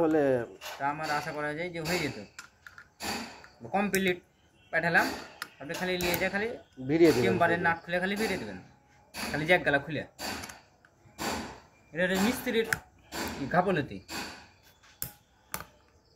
হলে তা আমার আশা করা যায় যে হয়ে যেত। কমপ্লিট পাঠালাম, আপনি খালি নিয়ে যা খালি ভিড়িয়ে দিবেন। চেম্বারের নাট খুলে খালি বেরিয়ে দেবেন, খালি জ্যাক গালা খুলে। এটা মিস্ত্রির গাফলতি।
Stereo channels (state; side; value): identical; both; correlation 1.00